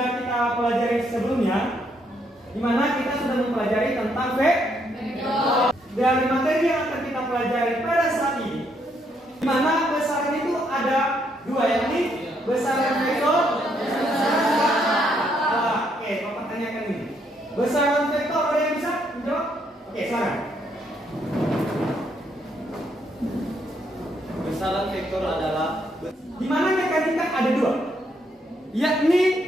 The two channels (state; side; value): normal; both; correlation 0.73